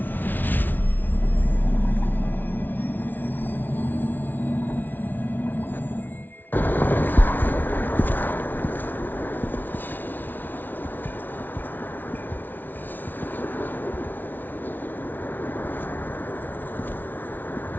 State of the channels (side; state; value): right; late; 0.088 ms